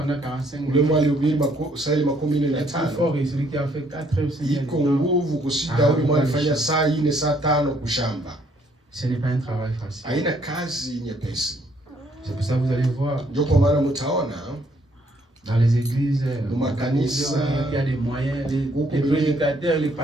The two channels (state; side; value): normal; both; correlation 0.67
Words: 45 ule minutes, mwenye alihubiri saa est plus 45, fort et celui qui a fait 4 heures, 5 iko heures. nguvu kushinda ule mwenye alifanya saa 4, saa 5 kushamba. Ce n'est pas un travail facile. Haina kazi nyepesi. C'est pour ça que vous allez voir Ndio kwa maana mtaona dans les églises, il y a des moyens, les prédicateurs, les